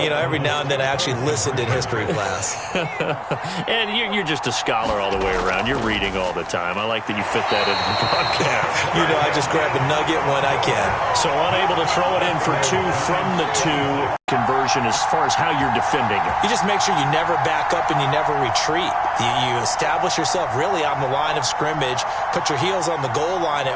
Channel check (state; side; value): identical; both; correlation 1.00